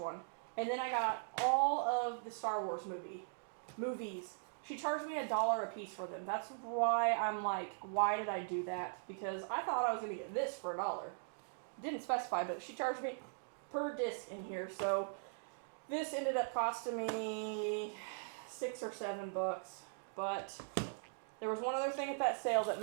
And then I got all of the Star Wars movies. She charged me $1 a piece for them. That's why I'm like, why did I do that? Because I thought I was going to get this for $1. Didn't specify, but she charged me per disc in here. So this ended up costing me $6 or $7. But there was one other thing at that sale that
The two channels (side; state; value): left; silent; digital silence